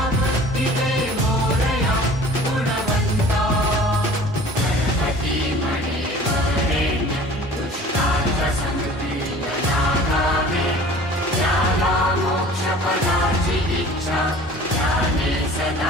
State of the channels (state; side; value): normal; both; correlation 0.45